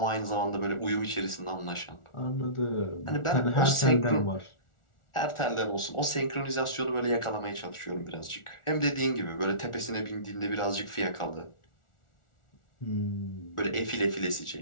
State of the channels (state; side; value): late; right; 1.4 ms